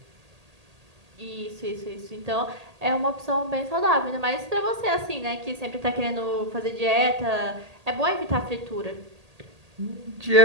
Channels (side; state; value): left; late; 1.8 ms